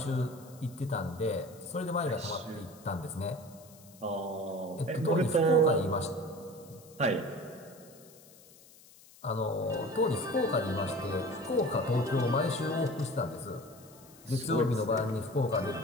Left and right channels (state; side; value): noise; left; hiss, 23 dB below the sound